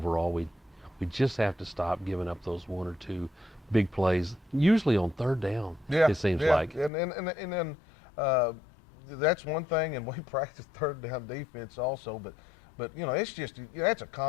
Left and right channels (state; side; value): drops out; right; at 6.9 s